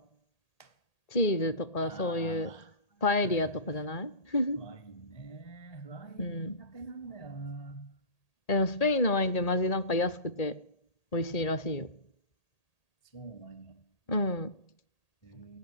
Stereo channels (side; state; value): right; late; 1.8 ms